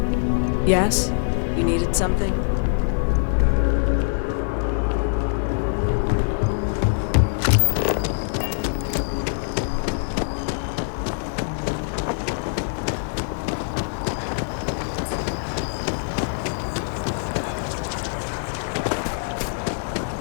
Yes? You needed something?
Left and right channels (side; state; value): right; silent; digital silence